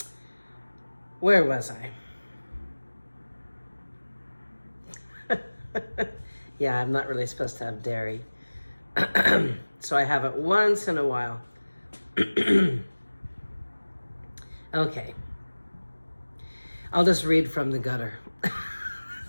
Where was I? Yeah, I'm not really supposed to have dairy. So I have it once in a while. Okay. I'll just read from the gutter.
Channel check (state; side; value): inverted; both; correlation -1.00